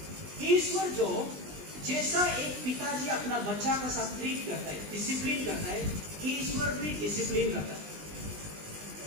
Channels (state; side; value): late; left; 20 ms